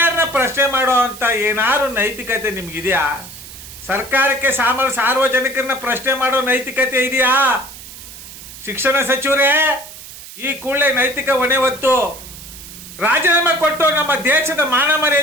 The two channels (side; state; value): right; noise; hiss, 15 dB below the sound